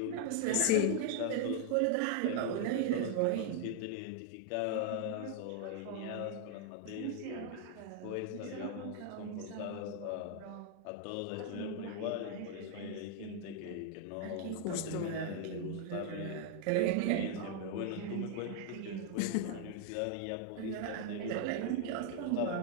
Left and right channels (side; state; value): both; different; correlation 0.00